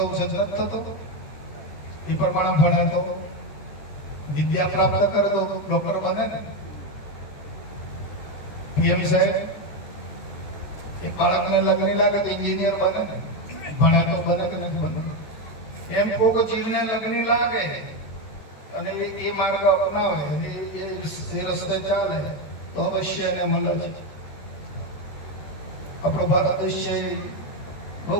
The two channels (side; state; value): right; late; 14 ms